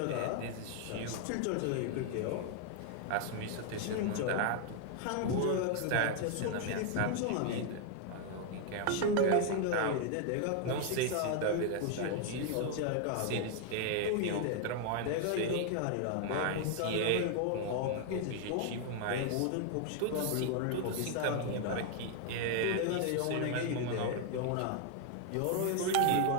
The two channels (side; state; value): both; different; correlation 0.00